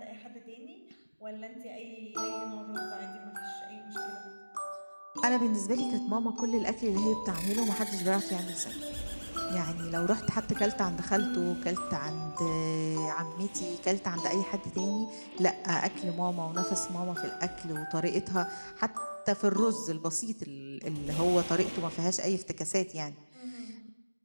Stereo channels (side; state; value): both; inverted; correlation -1.00